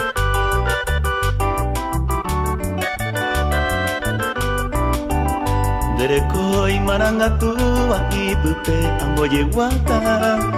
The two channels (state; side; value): identical; both; correlation 1.00